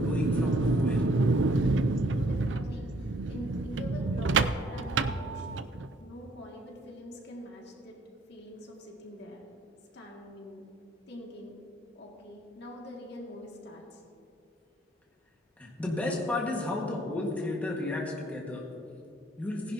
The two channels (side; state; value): both; normal; correlation 0.62